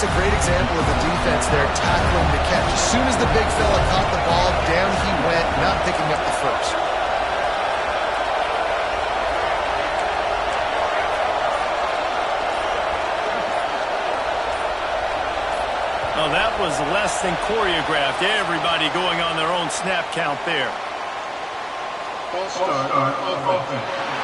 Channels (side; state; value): both; identical; correlation 1.00